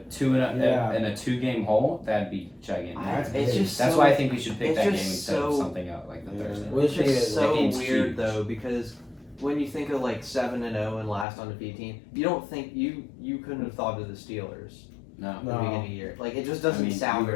Yeah. 2-game hole, that'd be gigantic. That's It's big. just That's so, why I think we should pick it's that game just instead of so- something else like the Yeah. Thursday. We'll It's see just it. so That game's weird huge. though because when you think of like 7-0 and last undefeated team, you don't think you couldn't have thought of the Steelers No. at the No. beginning of the year. Like it just I doesn't mean, sound you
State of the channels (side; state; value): right; drops out; at 11.2 s